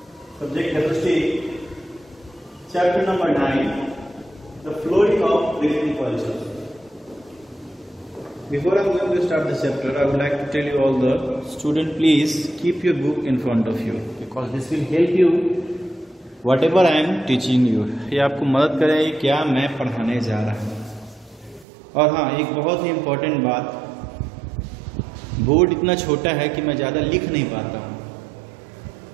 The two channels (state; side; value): drops out; left; at 21.7 s